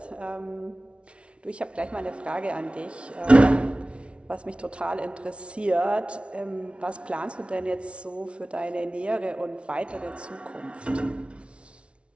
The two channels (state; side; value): late; left; 0.060 ms